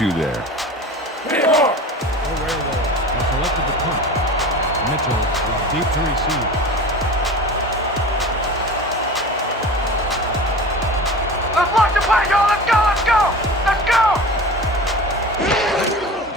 there. The Werewolf has selected the punt. Mitchell is deep to receive. Let's lock the play, y'all. Let's go.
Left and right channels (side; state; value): both; normal; correlation 0.35